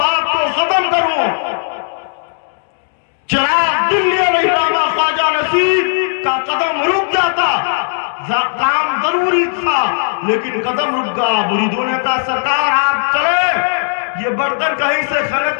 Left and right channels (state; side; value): silent; right; digital silence